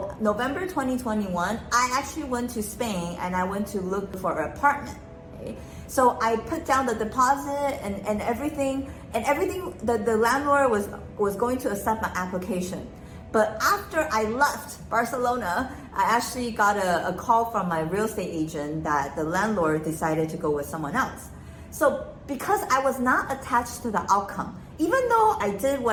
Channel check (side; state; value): both; identical; correlation 1.00